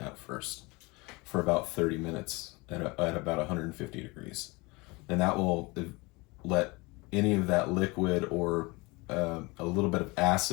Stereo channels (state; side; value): quieter; right; 25.2 dB